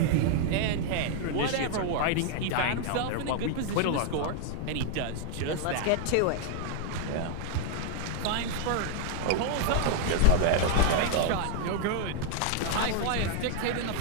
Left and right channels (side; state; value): both; different; correlation -0.01